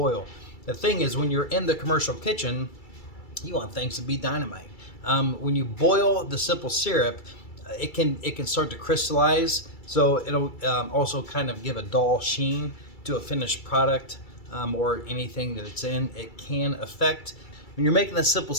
The thing is, when you're in the commercial kitchen, you want things to be dynamite. When you boil the simple syrup, it can start to crystallize, so it'll also kind of give a dull sheen to a finished product, or anything that it's in. It can affect. When you're making a simple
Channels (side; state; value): right; late; 2.3 ms